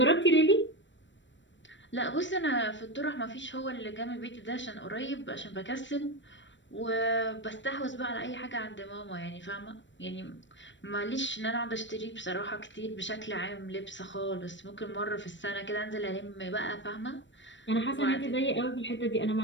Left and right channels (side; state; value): right; late; 0.54 ms